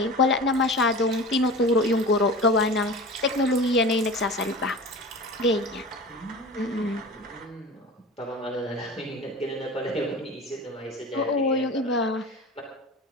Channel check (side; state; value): both; normal; correlation 0.34